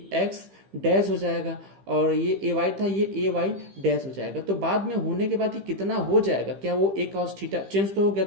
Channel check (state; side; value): late; left; 15 ms